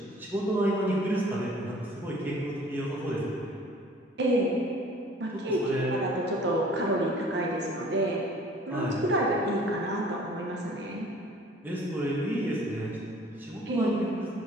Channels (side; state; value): both; normal; correlation 0.51